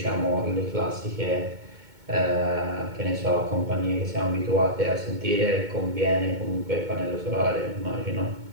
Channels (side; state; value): left; late; 2.2 ms